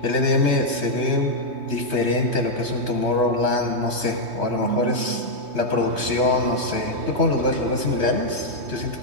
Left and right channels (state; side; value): late; left; 3.2 ms